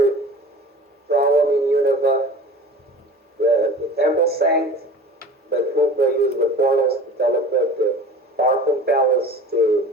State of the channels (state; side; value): normal; both; correlation 0.39